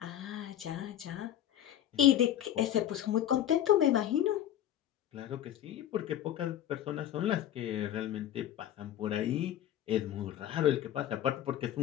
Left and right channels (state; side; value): quieter; right; 11.4 dB